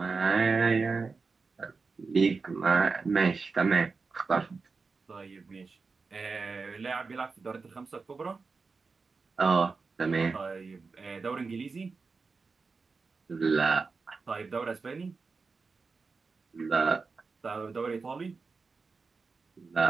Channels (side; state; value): left; quieter; 4.5 dB